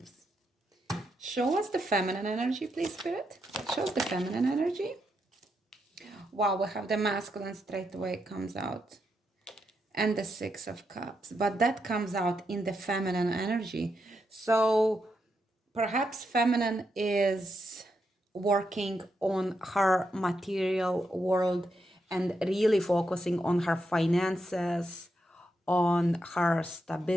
Show us the feminine energy, please, Spirit. Show us the feminine energy. Wow, we have the masculine straight away comes out. And the Six of Cups. But that comes out in the feminine energy. So perhaps feminine is working on her material world and really focusing on her finances, on her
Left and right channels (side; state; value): both; normal; correlation 0.82